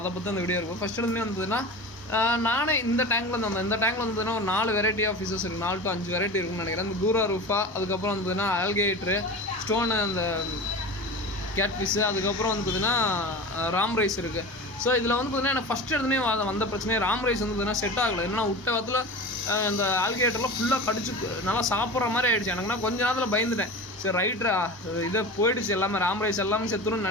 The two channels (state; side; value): normal; both; correlation 0.31